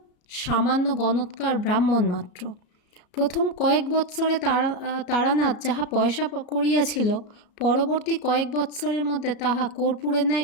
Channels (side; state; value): right; late; 34 ms